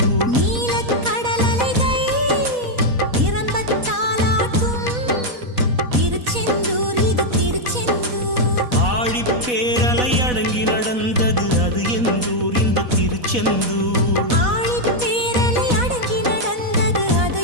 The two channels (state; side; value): late; left; 4.1 ms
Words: நீலக்கடல் அலைகள் நிரம்பத்தாலாட்டும் திருச்செந்தூர் இது திருச்செந்தூர். ஆழிப்பேரலை அடங்கி நடந்தது அது எந்தூர் இந்த திருச்செந்தூர். ஆழிப்பேரலை அடங்கி நடந்தது அது